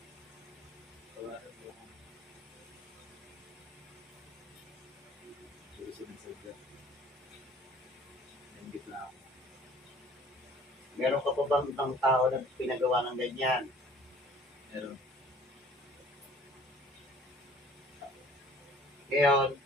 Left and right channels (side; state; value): both; normal; correlation 0.51